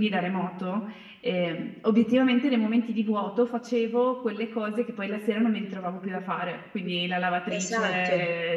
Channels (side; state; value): both; identical; correlation 1.00